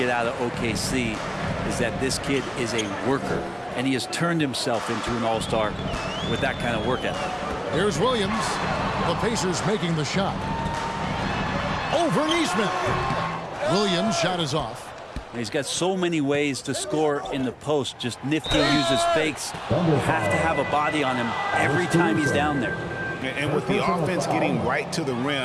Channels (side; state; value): both; identical; correlation 1.00